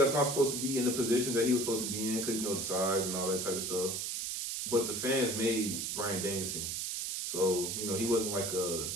not supposed to be in the position that he was supposed to be in because, the size and all that type of stuff. But the fans made Bryan Danielson. So, he wasn't like a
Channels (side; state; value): right; noise; hiss, 2 dB below the sound